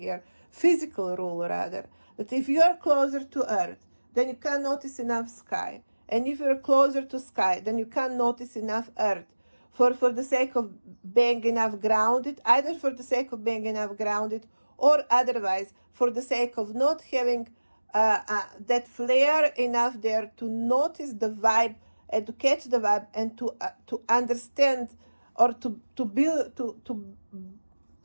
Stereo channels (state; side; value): inverted; both; correlation -1.00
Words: physical rule rather, that if you are closer to Earth, then you can notice enough sky. And if you're closer to sky, then you can't notice enough earth for the sake of being enough grounded, either for the sake of being enough grounded or otherwise for the sake of not having that flare enough there to notice the vibe and to catch the vibe and to understand or to be